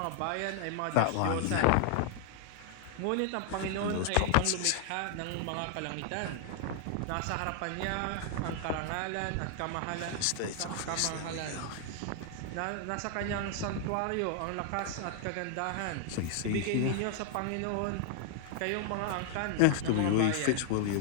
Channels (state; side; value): different; both; correlation 0.00